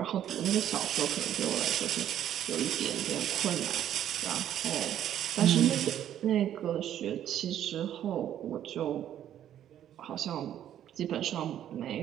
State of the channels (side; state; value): left; quieter; 10.9 dB